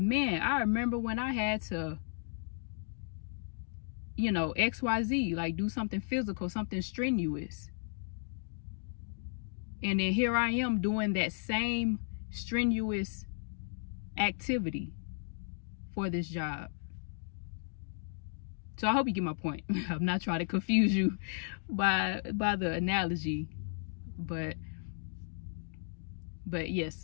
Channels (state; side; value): silent; right; digital silence